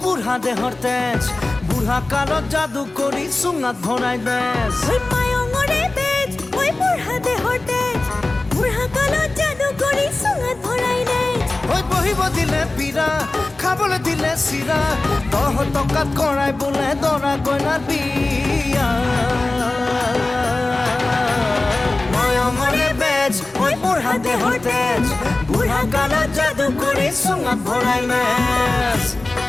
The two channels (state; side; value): quieter; right; 3.0 dB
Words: বুড়া দেহর তেজ বুড়া কালত জাদু করি সুঙাত ভরাই বেজ ওই মায়ঙরে বেজ ওই বুড়া দেহর তেজ বুড়া কালত জাদু করি সুঙাত ভরাই বেজ ওই বহিব দিলে পীড়া খাবলে দিলে চিৰা দহ টকাত কৰাই বোলে দৰা কইনাৰ বিয়া মায়ঙরে বেজ ওই বুড়া দেহর তেজ বুড়া কালত জাদু করি সুঙাত ভরাই বেজ